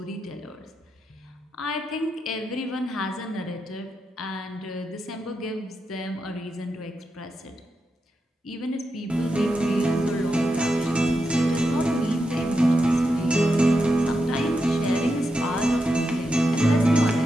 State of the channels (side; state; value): both; normal; correlation 0.86